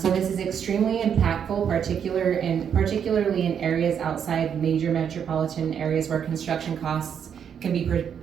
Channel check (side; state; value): left; quieter; 8.0 dB